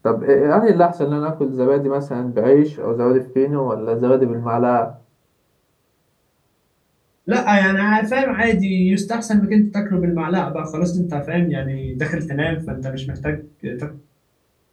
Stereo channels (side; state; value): both; identical; correlation 1.00